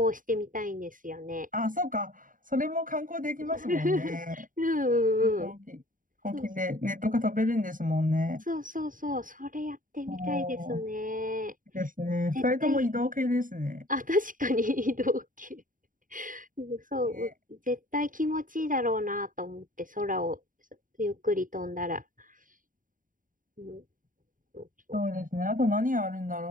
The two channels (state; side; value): late; left; 0.39 ms